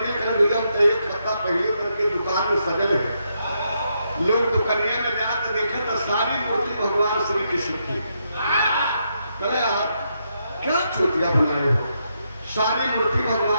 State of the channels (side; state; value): both; inverted; correlation -0.80